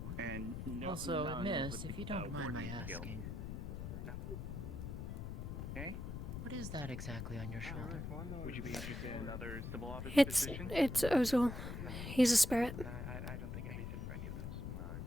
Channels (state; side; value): noise; left; rumble, 6 dB below the sound